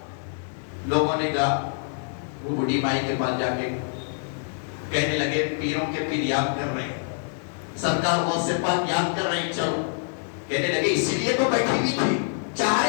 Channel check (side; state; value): right; silent; digital silence